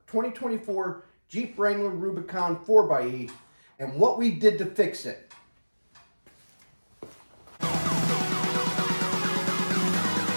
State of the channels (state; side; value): inverted; both; correlation -1.00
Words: 2024 Jeep Wrangler Rubicon 4xe and what we did to fix it.